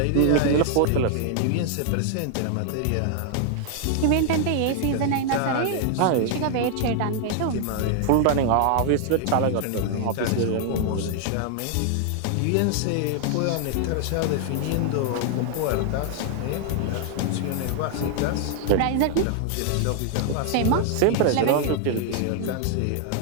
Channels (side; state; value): both; different; correlation 0.00